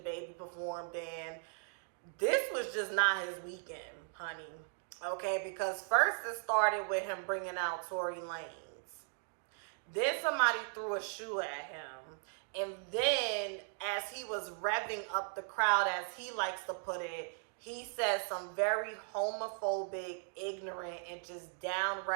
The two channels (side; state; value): left; silent; 53 dB below the other